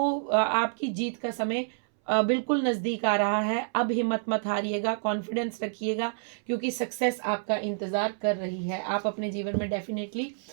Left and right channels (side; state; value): left; silent; 59 dB below the other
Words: आपकी जीत का समय बिल्कुल नज़दीक आ रहा है। अब हिम्मत मत हारिएगा, कॉन्फिडेंस रखिएगा, क्योंकि सक्सेस आपका इंतज़ार कर रही है। आप अपने जीवन में डेफिनेटली